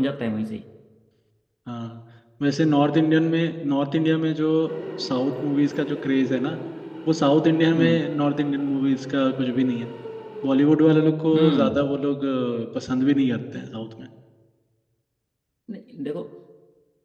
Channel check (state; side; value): identical; both; correlation 1.00